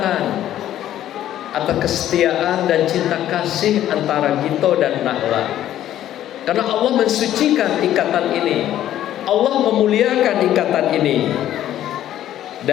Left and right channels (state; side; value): quieter; right; 12.1 dB